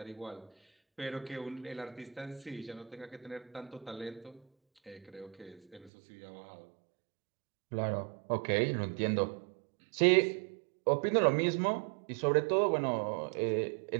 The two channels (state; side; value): drops out; left; at 5.9 s